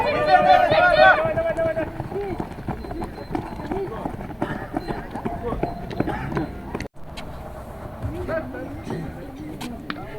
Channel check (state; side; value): identical; both; correlation 1.00